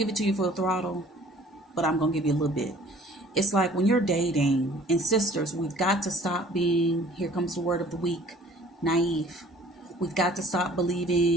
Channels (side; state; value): both; normal; correlation 0.52